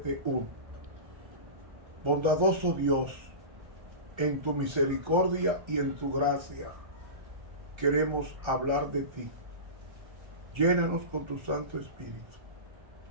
Bondadoso Dios, en tu misericordia y en tu gracia queremos hablar de ti. Llénanos con tu Santo Espíritu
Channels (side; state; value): left; late; 1.3 ms